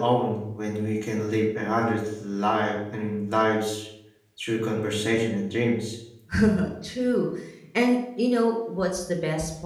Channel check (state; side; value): identical; both; correlation 1.00